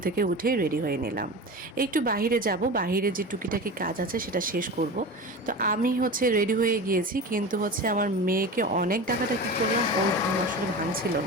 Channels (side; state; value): both; normal; correlation 0.30